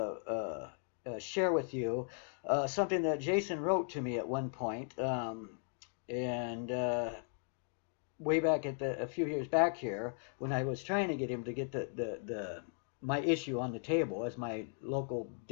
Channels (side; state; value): right; silent; 53 dB below the other